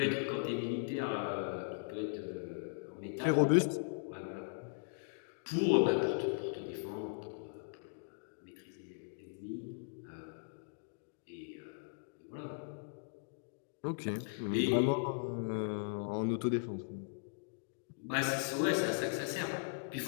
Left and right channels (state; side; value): silent; right; digital silence